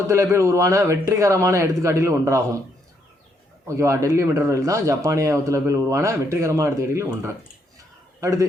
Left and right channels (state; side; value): normal; both; correlation 0.74